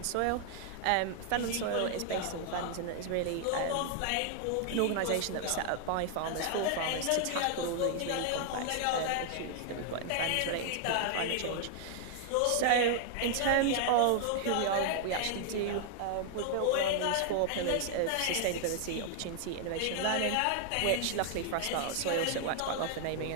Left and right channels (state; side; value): different; both; correlation 0.00